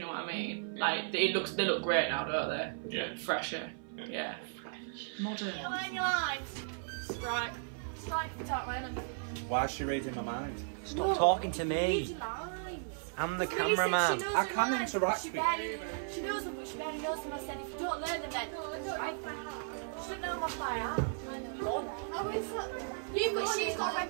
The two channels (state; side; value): silent; left; 54 dB below the other